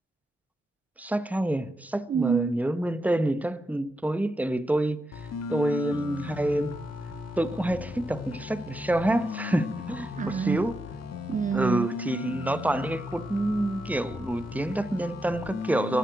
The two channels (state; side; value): normal; both; correlation 0.85